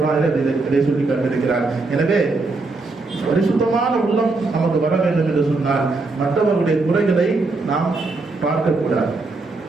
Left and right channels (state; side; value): quieter; left; 3.5 dB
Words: இதை சொல்லி காட்டியிருக்கிறார். எனவே பரிசுத்தமான உள்ளம் நமக்கு வர வேண்டும் என்று சொன்னால் மற்றவர்களுடைய குறைகளை நாம் பார்க்கக்கூடாது.